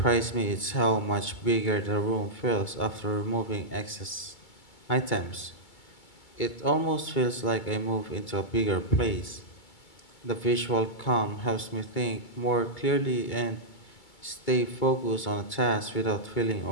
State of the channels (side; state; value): right; late; 2.3 ms